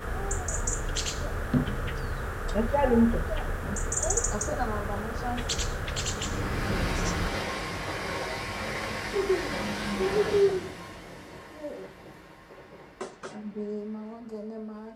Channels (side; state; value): both; identical; correlation 1.00